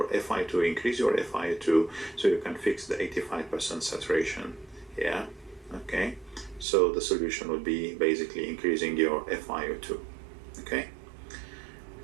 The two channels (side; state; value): left; drops out; at 6.7 s